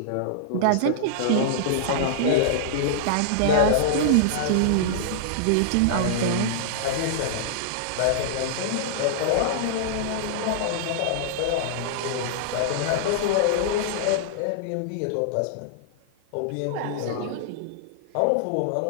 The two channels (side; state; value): both; different; correlation -0.01